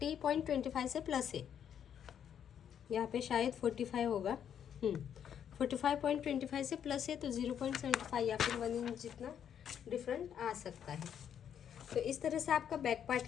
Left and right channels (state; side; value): quieter; right; 8.8 dB